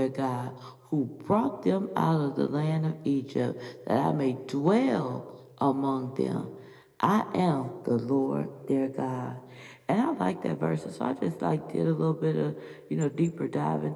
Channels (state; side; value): identical; both; correlation 1.00